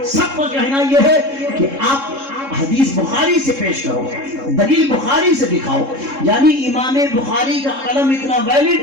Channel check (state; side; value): late; left; 3.7 ms